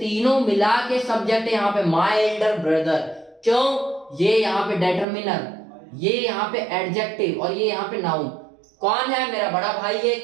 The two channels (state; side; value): drops out; left; at 5.1 s